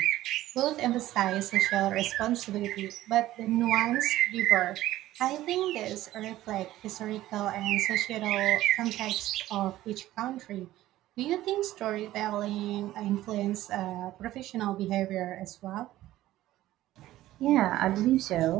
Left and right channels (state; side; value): quieter; left; 15.0 dB